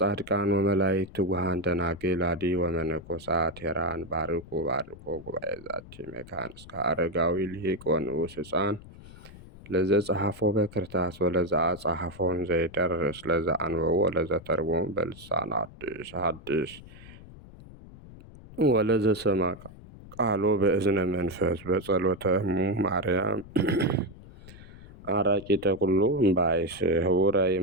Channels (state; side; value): noise; left; rumble, 18 dB below the sound